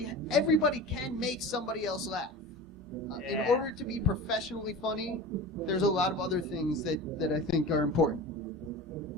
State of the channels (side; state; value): both; normal; correlation 0.33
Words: can make somebody else laugh. In order to be professionally funny, there's a lot of other things that I think are important.